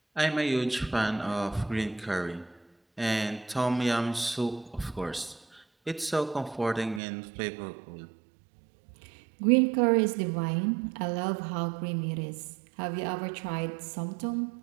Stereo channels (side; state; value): left; drops out; at 7.0 s